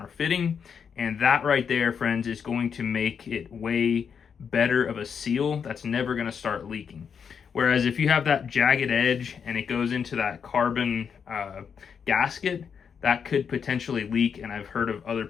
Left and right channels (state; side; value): quieter; right; 6.8 dB